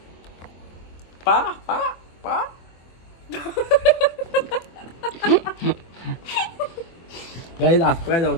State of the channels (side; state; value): right; late; 24 ms